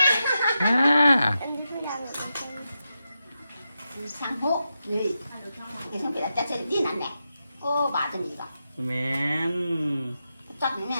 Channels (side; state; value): both; inverted; correlation -0.88